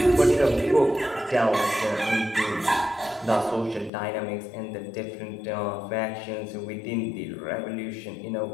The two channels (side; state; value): right; drops out; at 3.9 s